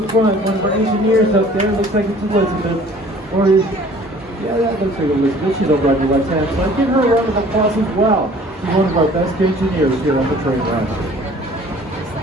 front, one of our engineers up there, looks like it's Elizabeth. Or is, yeah, that looks like Elizabeth. She's over on your left hand side. Give her a round of applause as well. She's one of our best engineers here on the train ride.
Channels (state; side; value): normal; both; correlation 0.51